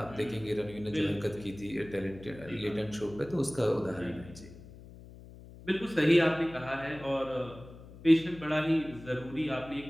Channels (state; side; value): noise; left; hum, 18 dB below the sound